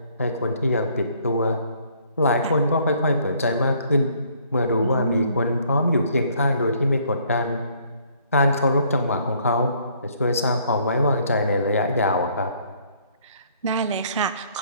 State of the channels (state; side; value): inverted; both; correlation -0.63